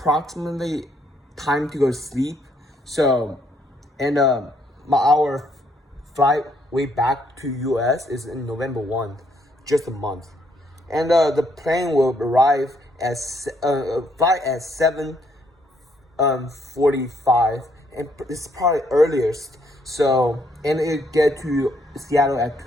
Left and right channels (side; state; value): both; normal; correlation 0.71